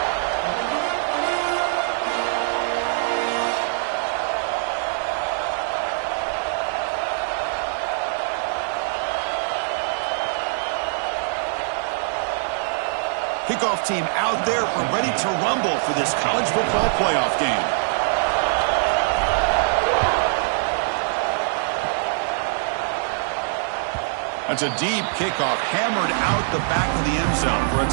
Kickoff team out there ready to rumble for this college football playoff game. That's a deep kickoff, hammered out the back of the end zone for a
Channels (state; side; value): silent; left; digital silence